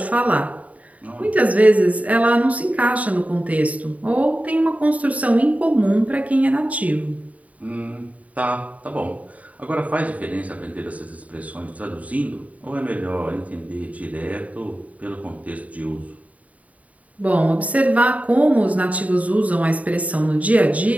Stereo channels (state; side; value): late; left; 0.069 ms